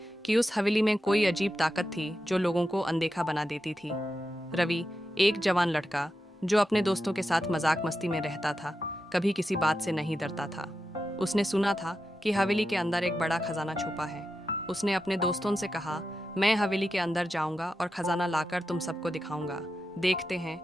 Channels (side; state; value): both; normal; correlation 0.89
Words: कि उस हवेली में कोई अजीब ताकत थी जो लोगों को अनदेखा बना देती थी। रवि, एक जवान लड़का जो अपने दोस्तों के साथ मजाक मस्ती में रहता था, कभी किसी बात से नहीं डरता था। उसने सुना था कि हवेली के अंदर एक बड़ा खजाना छुपा है। उसने अपने दोस्तों से कहा, मैं हवेली के अंदर जाऊंगा और खजाना लाकर तुम सबको दिखाऊंगा। देखते